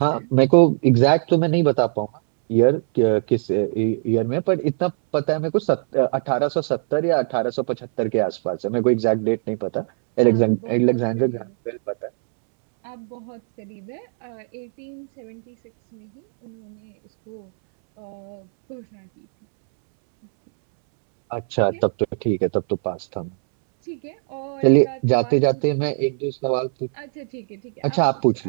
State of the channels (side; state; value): left; silent; 65 dB below the other